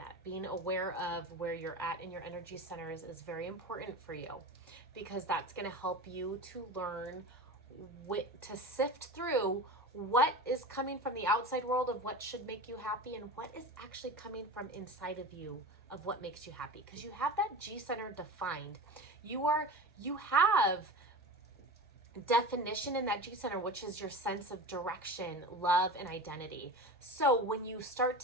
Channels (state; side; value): normal; both; correlation 0.31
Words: Being aware of where you're at in your energy centers is very important for you, because that's going to help you to learn to sift through what is coming from the outside world of what should make you happy, and what is actually coming from inside of you of what makes you happy. Because you have that G center defined. You have definition in that G center, which is your sense of direction, love, and identity. So when you start